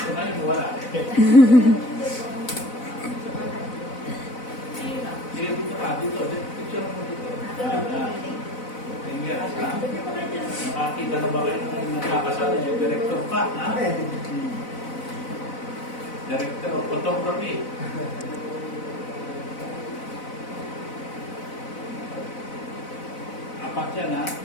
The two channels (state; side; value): late; right; 4.0 ms